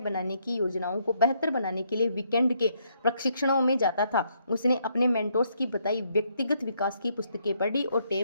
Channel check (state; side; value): inverted; both; correlation -0.73